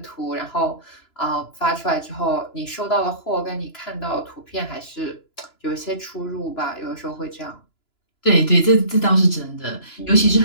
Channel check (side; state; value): right; late; 2.9 ms